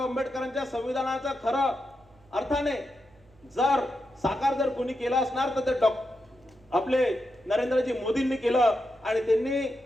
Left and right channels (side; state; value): right; noise; hum, 29 dB below the sound